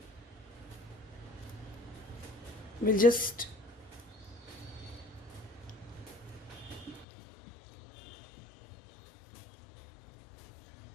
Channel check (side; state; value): right; drops out; at 7.1 s